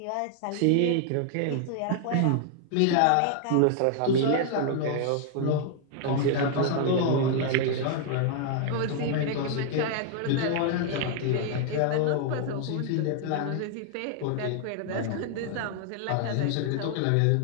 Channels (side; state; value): both; different; correlation 0.00